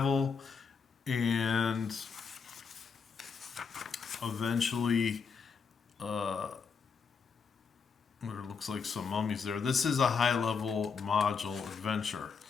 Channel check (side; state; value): right; quieter; 5.7 dB